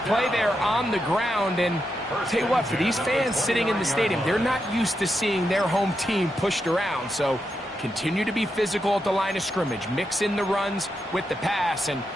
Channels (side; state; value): both; normal; correlation 0.85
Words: play there on the ground. And I'll tell you what, for these fans sitting in the stadium, they're not used to seeing their home team pushed around. So continue to be physical at the line of scrimmage. Mix in the runs with the pass. And